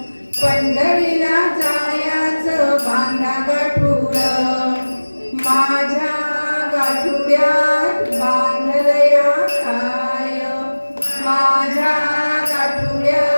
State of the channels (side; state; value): both; inverted; correlation -1.00